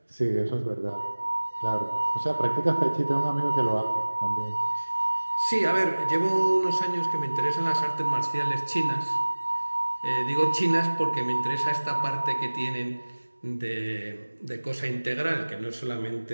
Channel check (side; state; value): both; inverted; correlation -1.00